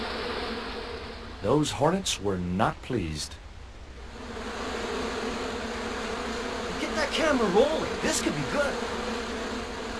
Those hornets were not pleased. Get that camera rolling. This could be good.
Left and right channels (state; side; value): identical; both; correlation 1.00